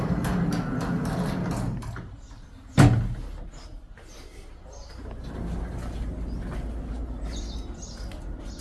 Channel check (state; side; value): identical; both; correlation 1.00